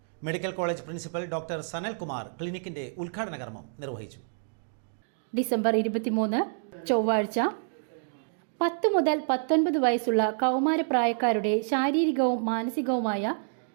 Medical college principal doctor Sanalkumar ക്ലിനിക്കിന്റെ ഉദ്ഘാടന കർമ്മം നിർവഹിച്ചു. ഡിസംബർ 23 ചൊവ്വാഴ്ച 10 മുതൽ 19 വയസ്സുള്ള കൗമാരപ്രായക്കാരുടെ ശാരീരികവും മാനസികവുമായ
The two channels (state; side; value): silent; left; digital silence